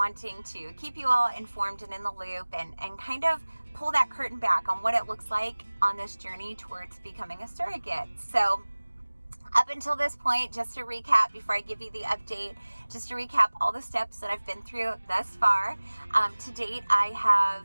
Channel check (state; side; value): inverted; both; correlation -1.00